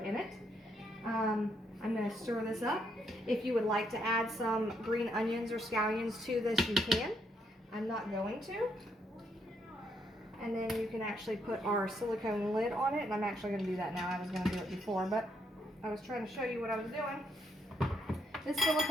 it. I'm going to stir this up. If you would like to add some green onions or scallions to this, you can. I'm not going to. And then you can actually put our silicone lid on it, and I'm actually going to do that now. I was going to do it before, but I was trying to show you what I was doing. This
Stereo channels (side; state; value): both; normal; correlation 0.75